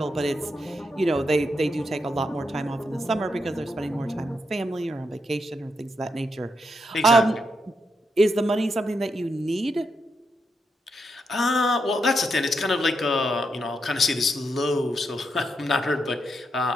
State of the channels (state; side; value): normal; both; correlation 0.81